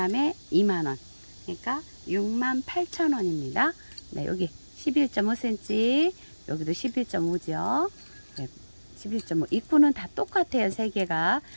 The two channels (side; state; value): both; inverted; correlation -1.00